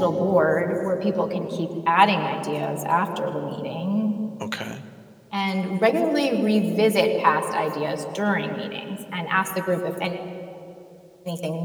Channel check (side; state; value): both; identical; correlation 1.00